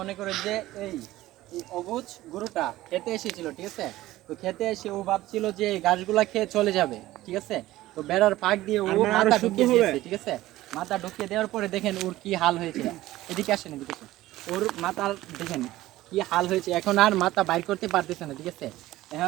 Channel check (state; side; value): quieter; left; 16.2 dB